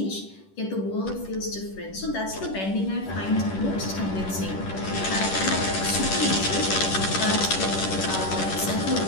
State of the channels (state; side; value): late; right; 10 ms